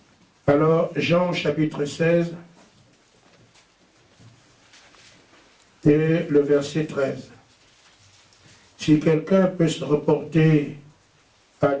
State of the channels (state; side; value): identical; both; correlation 1.00